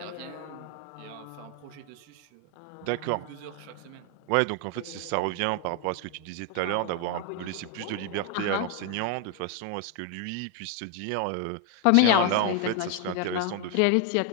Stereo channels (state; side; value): different; both; correlation 0.01